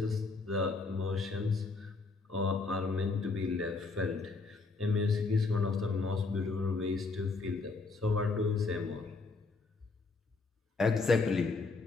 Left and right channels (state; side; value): quieter; right; 3.9 dB